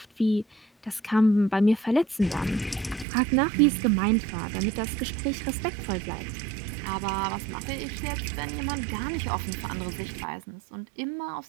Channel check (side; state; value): left; drops out; at 3.1 s